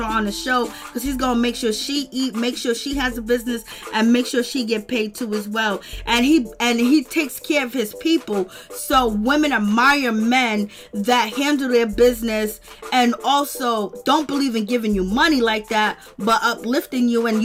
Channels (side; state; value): both; identical; correlation 1.00